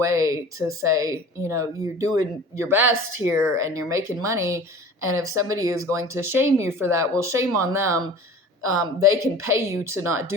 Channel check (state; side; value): normal; both; correlation 0.41